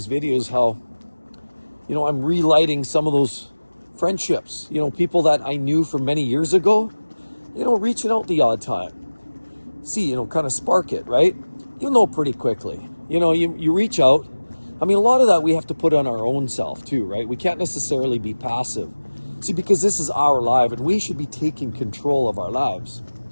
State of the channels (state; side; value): inverted; both; correlation -1.00